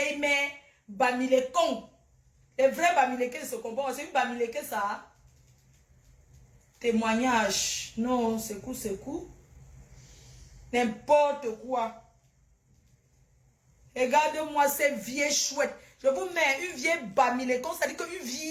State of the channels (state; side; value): identical; both; correlation 1.00